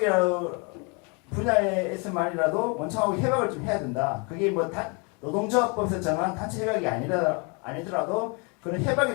분야에서만이라도 원청하고 협약을 좀 해야 된다. 그게 뭐 노동조합법에서 정한 단체 협약이 아니더라도 그런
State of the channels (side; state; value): right; quieter; 33.2 dB